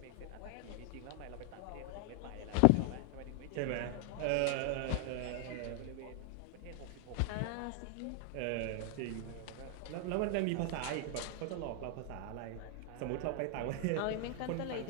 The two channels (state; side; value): different; both; correlation 0.00